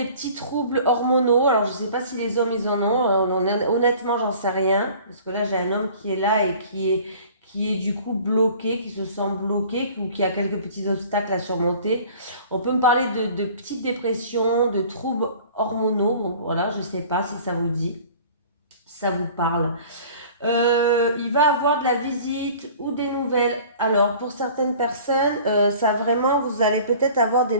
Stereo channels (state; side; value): inverted; both; correlation -0.47